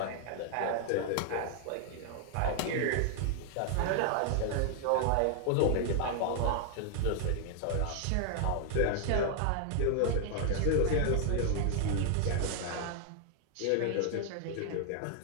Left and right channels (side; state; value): both; different; correlation 0.00